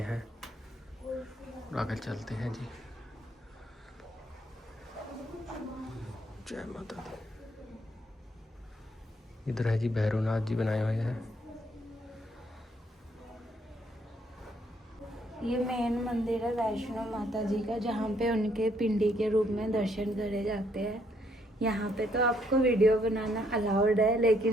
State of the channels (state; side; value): normal; both; correlation 0.70